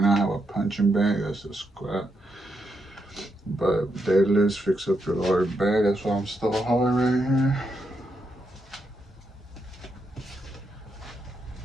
now I have a punching bag, that's a squat. But deadlifts fix up your lower back, that's why I'm still hard right here.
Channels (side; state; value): both; normal; correlation 0.82